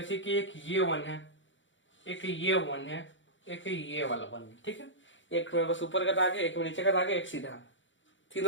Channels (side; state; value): right; late; 0.55 ms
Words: कि एक ये 1 है, एक ये 1 है, एक ये वाला 1 है। ठीक है, एक में बस ऊपर का दाग है, एक में नीचे का दाग है, एक सीधा है,